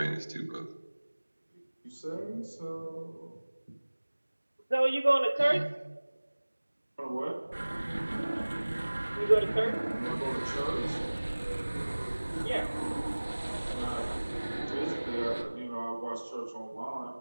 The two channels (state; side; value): inverted; both; correlation -1.00